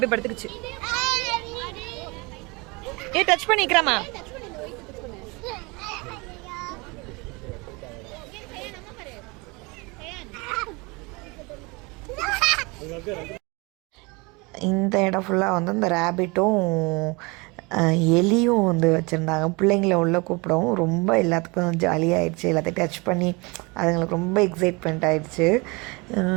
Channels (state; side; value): quieter; left; 26.9 dB